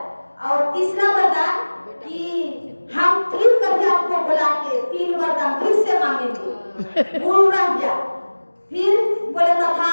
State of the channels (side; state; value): both; inverted; correlation -1.00